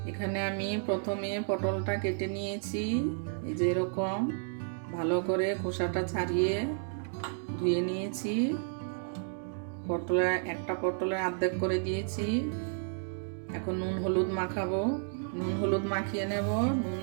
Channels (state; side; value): silent; left; digital silence